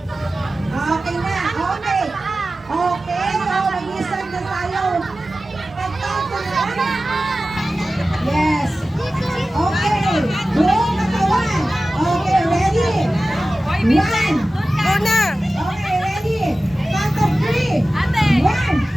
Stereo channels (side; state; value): both; normal; correlation 0.95